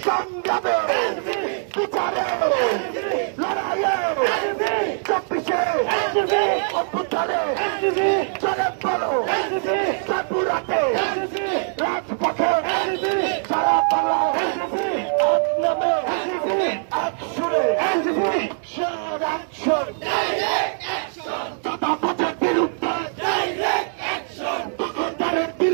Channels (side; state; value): left; silent; 61 dB below the other